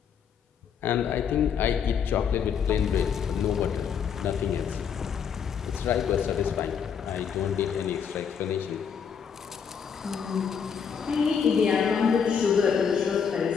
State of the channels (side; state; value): right; quieter; 7.1 dB